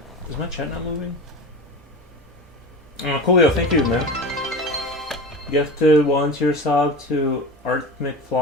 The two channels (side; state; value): both; normal; correlation 0.30